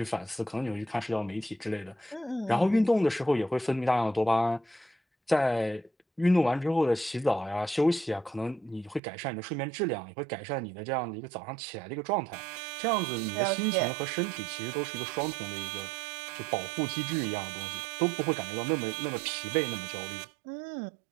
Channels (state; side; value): drops out; left; at 9.0 s